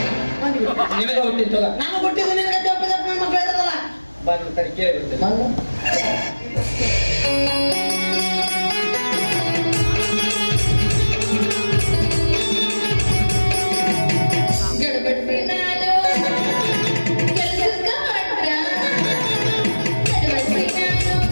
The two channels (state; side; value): inverted; both; correlation -1.00